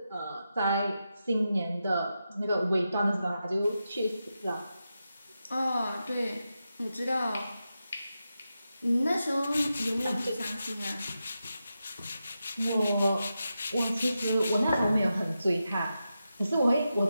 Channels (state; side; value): inverted; both; correlation -0.89